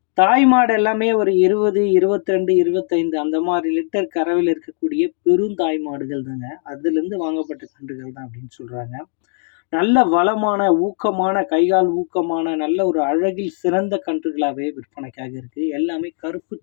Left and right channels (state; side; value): silent; right; 59 dB below the other